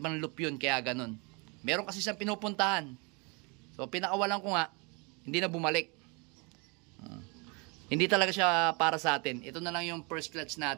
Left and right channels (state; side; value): quieter; left; 30.9 dB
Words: loop yun, kaya ganun. Meron kasi siyang pinupuntahan. So, pinakawalan ko nga, hindi na bumalik. Hindi talaga siya para sa atin. Ito na lang yung first clutch